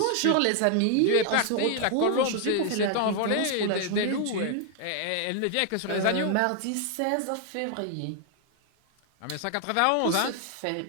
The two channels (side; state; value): both; different; correlation 0.00